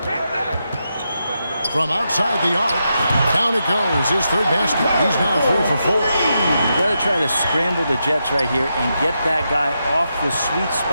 From outside the arc, down it goes. His third basket. He's now 3 for 4. You got to try to scramble the Jets right here and get that guy off the sweet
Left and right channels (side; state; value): both; inverted; correlation -0.85